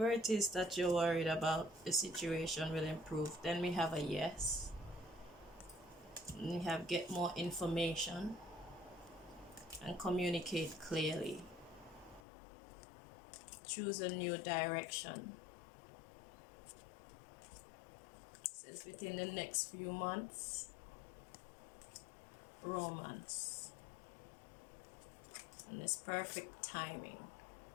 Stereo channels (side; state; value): right; drops out; at 12.2 s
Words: it is that you're worried about, the situation will improve. Then we have a yes. And we have get more information and communicate clearly. Choose a new direction. It says within the next few months, romance. And it's perfect timing.